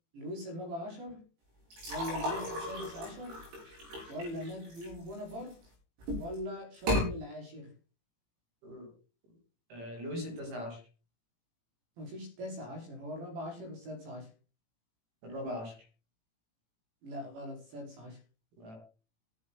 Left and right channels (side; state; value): left; late; 18 ms